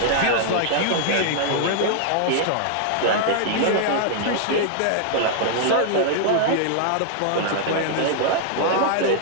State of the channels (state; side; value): different; both; correlation -0.01